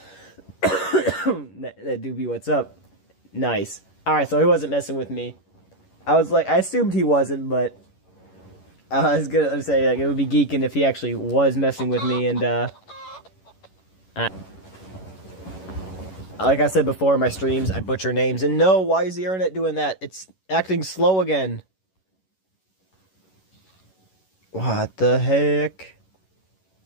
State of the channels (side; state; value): right; late; 11 ms